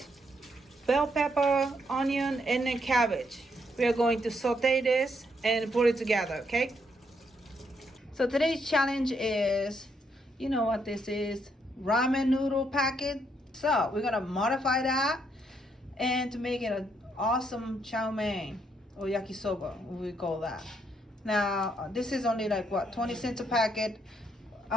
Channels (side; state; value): both; normal; correlation 0.75